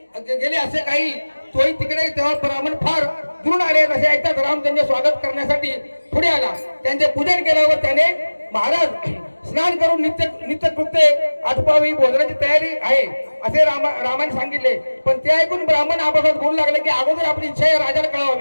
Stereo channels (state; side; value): inverted; both; correlation -1.00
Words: असे काही तोही तिकडे तेव्हा ब्राह्मण फार दुरून आले असे ऐकतात राम त्यांचे स्वागत करण्यासाठी पुढे आला. त्यांचे पूजन केल्यावर त्याने महाराज स्नान करून नित्यकृत्य आटपावी भोजनाची तयारी आहे असे रामाने सांगितले. पण ते ऐकून ब्राह्मण आपापसात बोलू लागले की अगोदर आपली इच्छा या राजाला